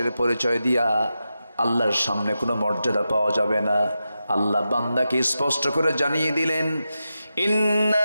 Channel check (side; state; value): both; inverted; correlation -0.90